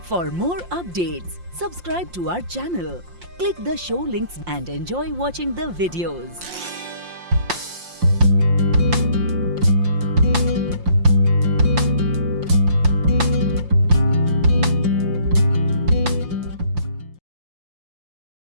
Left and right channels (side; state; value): left; late; 5.7 ms